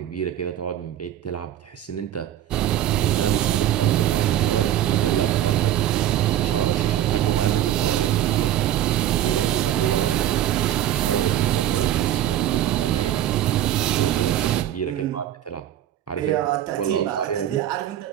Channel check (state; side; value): quieter; left; 11.9 dB